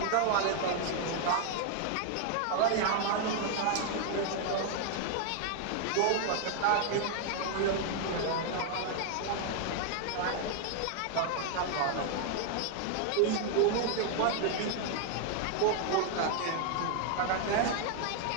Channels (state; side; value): different; both; correlation 0.00